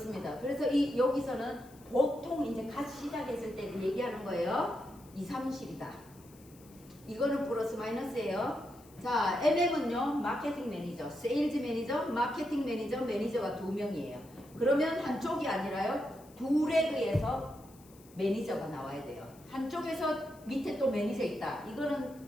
그래서 여기서는 보통 이제 갓 시작했을 때 얘기하는 거예요. 2, 30이다. 이거는 플러스 마이너스예요. 자, MM은요, 마케팅 매니저, 세일즈 매니저, 마케팅 매니저, 매니저가 2명이에요. 그러면 한쪽이 아니라요, 두 레그에서 매니저가 나와야 돼요. 한쪽에서 밑에 또 매니저 있다. 이거는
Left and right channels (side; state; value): left; noise; hiss, 25 dB below the sound